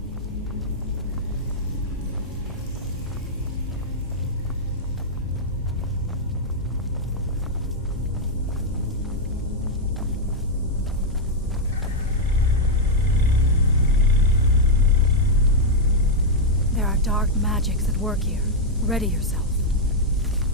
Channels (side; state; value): both; normal; correlation -0.03